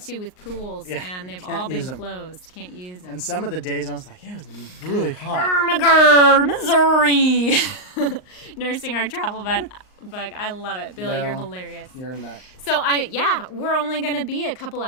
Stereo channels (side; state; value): right; late; 38 ms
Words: with pools, and they've all been closed. Can't use them. And some of the days I was like, it was really hot. Ermagerd, Missouri. Nursing our travel bug. I love it. Bill, you're hilarious. You're a nut. So, we're only going to be a couple